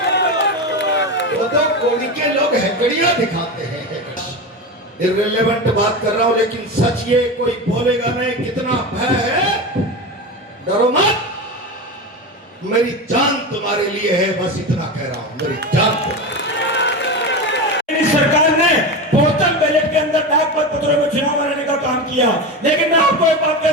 वो तो कोड़ी के लोग हैकड़ियां दिखाते हैं, इररिलेवेंट बात कर रहा हूं, लेकिन सच ये कोई बोलेगा नहीं। कितना भय है, डरो मत, मेरी जान तुम्हारे लिए है, बस इतना कह रहा हूं, मेरी जान तुम्हारे। सरकार ने पोस्टल बैलेट के अंदर डाक मतपत्रों में चुनाव कराने का काम किया, लेकिन मैं आपको एक बात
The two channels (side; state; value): both; normal; correlation 0.21